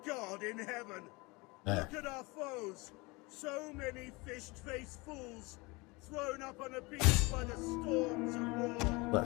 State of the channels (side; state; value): right; quieter; 25.3 dB